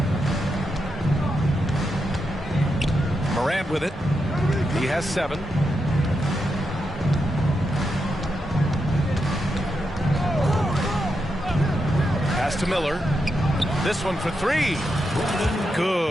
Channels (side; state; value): both; normal; correlation 0.85